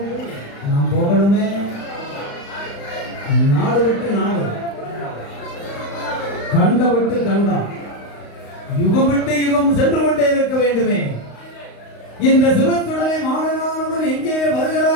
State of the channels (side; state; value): right; late; 35 ms